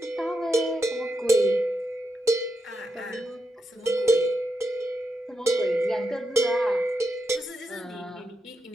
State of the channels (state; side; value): normal; both; correlation 0.85